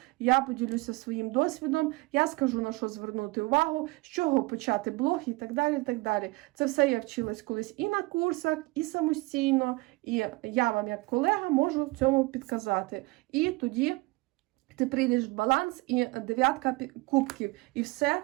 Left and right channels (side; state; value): left; quieter; 23.8 dB